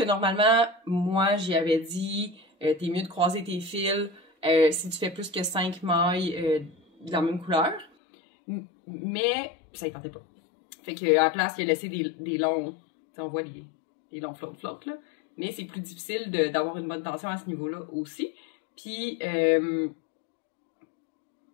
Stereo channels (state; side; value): drops out; right; at 7.9 s